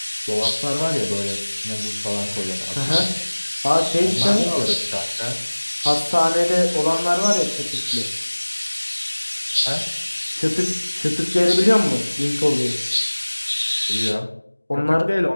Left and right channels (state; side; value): inverted; both; correlation -1.00